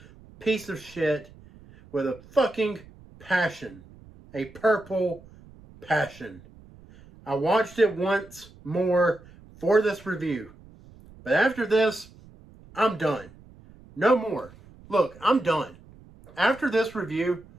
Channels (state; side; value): noise; right; rumble, 23 dB below the sound